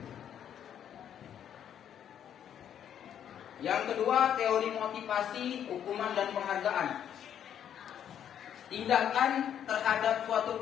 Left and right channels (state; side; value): quieter; right; 9.5 dB